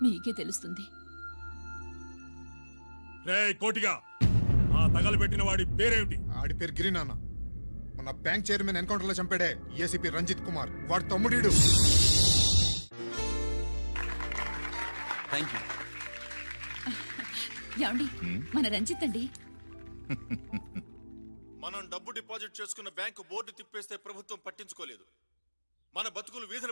మీకే తెలుస్తుంది. రే కోటిగా, ఆ తగలబెట్టిన వాడి పేరేమిటి? ఆడి పేరు గిరి నాన్న. మన బ్యాంక్ చైర్మన్ ఎన్కౌంటర్ లో చంపాడే ఏసీపీ రంజిత్ కుమార్, వాడి తమ్ముడీడు. ఏమండి, మన రంజిత్ అండి. మనం డబ్బు డిపాజిట్ చేసుకున్న బ్యాంకు బోర్డు తిప్పేస్తే ప్రభుత్వం పట్టించుకోలేదు. మన బతుకులు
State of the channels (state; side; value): inverted; both; correlation -1.00